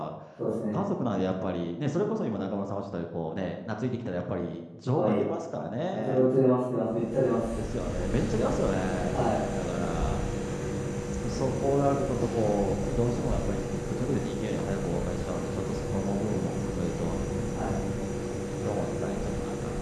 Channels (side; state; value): both; identical; correlation 1.00